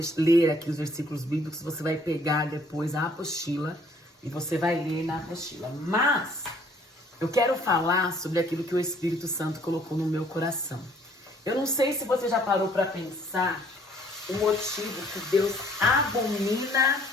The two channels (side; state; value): both; normal; correlation 0.60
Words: ler aqui os versículos bíblicos, você vai pegar depois a apostila e você vai ler na apostila. Mas eu quero falar sobre aquilo que o Espírito Santo colocou no meu coração. Eu não sei se você já parou para pensar o motivo que Deus abomina